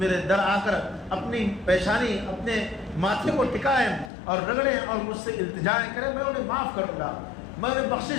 در آ کر اپنی پیشانی اپنے ماتھے کو ٹکائیں اور رگڑیں اور مجھ سے التجائیں کریں، میں انہیں معاف کروں گا، میں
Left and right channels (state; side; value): drops out; right; at 4.1 s